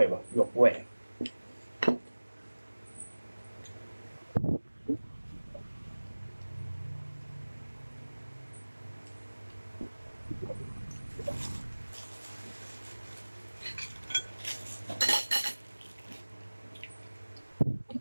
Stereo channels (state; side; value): inverted; both; correlation -1.00